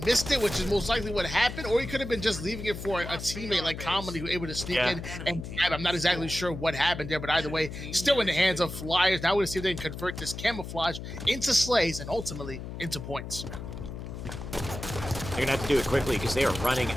missed it, which is most likely what happened, or he could have been just leaving it for a teammate like Comedy who was able to sneak in and grab. I'm not exactly sure what happened there, but either way, still in the hands of Flyers. Now we're going to see if they can convert this camouflage into slays and ultimately into points. They're gonna have to do it quickly because they are running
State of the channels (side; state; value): left; noise; hum, 9 dB below the sound